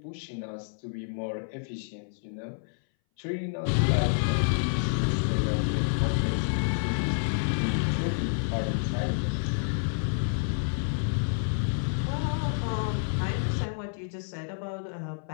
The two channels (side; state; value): right; silent; 59 dB below the other